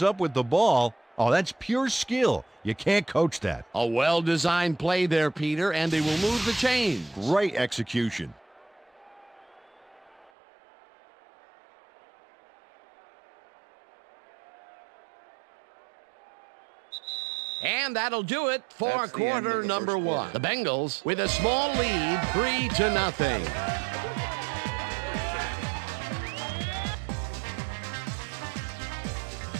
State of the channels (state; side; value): drops out; left; at 10.3 s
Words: up with the ball. Oh, that's pure skill. You can't coach that. A well-designed play there, Peter, and they will move the chains. Great execution. And that'll do it for quarter number 1. The Bengals with a small lead, 3-0.